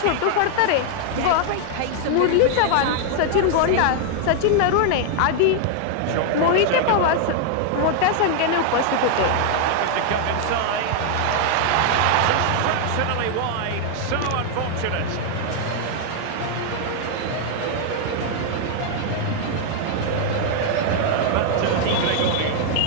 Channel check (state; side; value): different; both; correlation 0.00